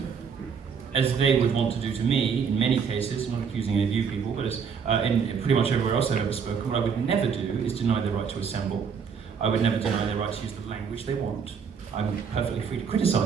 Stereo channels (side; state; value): left; quieter; 6.5 dB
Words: as they would want to do to me, in many cases, I'm not accusing any of you people, but as in pretty much everywhere else I've ever spoken, what I would never do is deny their right to assemble. I would never deny their right to use the language they want. I'm perfectly free to